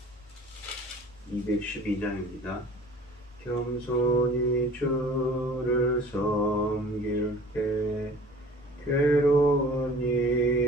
212장입니다. 겸손히 주를 섬길 때 괴로운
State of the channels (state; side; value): normal; both; correlation 0.45